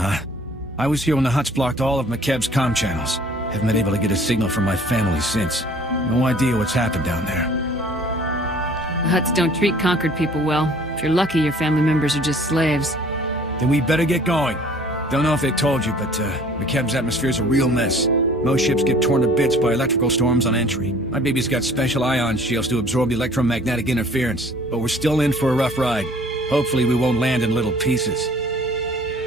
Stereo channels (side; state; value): both; normal; correlation 0.52